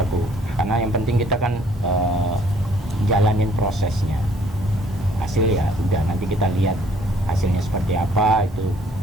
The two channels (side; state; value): both; normal; correlation 0.61